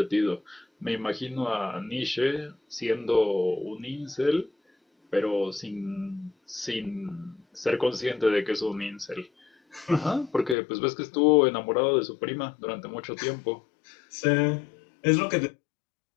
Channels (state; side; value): drops out; right; at 10.6 s